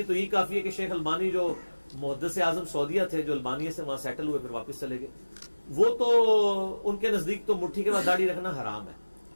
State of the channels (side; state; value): both; inverted; correlation -1.00